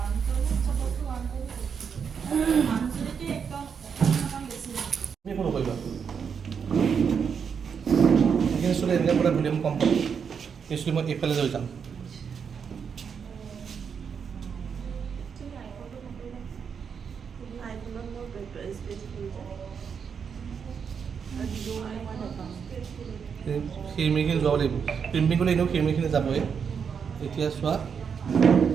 তুমি একো নকৰিবা এইখিনি চুলি এনেকৈ বোলে ভলিউম কম পাব এই চুলি মই এইফালে লৈ যাম খিৰিমিখিনি যোৱাব লাগিব ক্ৰিম্পিং কৰিলে এনেও খিৰিমিখিনি যাবই এতিয়া চোৱা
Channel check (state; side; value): quieter; left; 6.7 dB